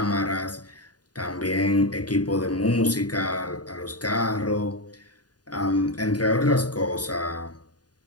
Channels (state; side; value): late; right; 0.69 ms